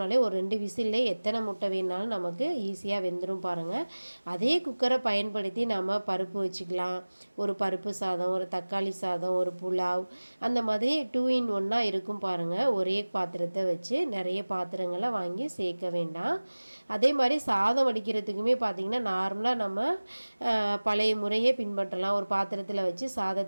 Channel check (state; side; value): inverted; both; correlation -1.00